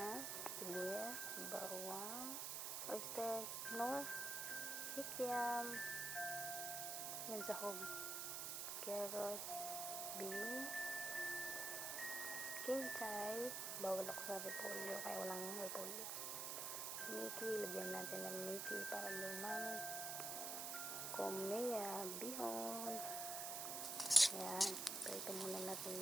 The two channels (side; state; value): right; noise; hiss, 1 dB below the sound